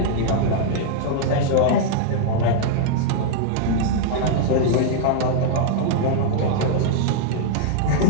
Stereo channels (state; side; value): different; both; correlation -0.01